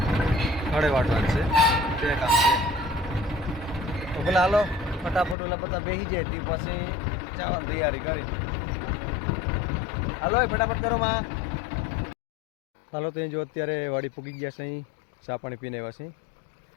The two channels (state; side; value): drops out; right; at 5.4 s